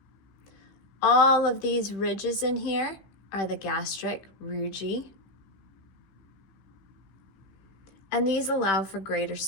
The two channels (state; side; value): late; right; 15 ms